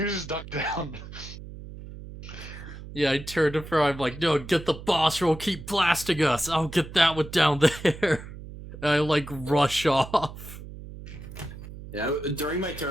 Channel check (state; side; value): noise; right; hum, 13 dB below the sound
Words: was just ducked down. yeah, I turned to Fair, I'm like, no, get the boss roll, keep blasting us. I'll get that one down there. And I like rush off. Yeah, during my